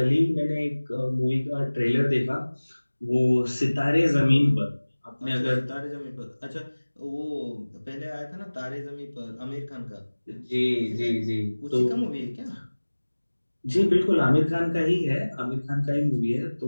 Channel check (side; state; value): both; inverted; correlation -1.00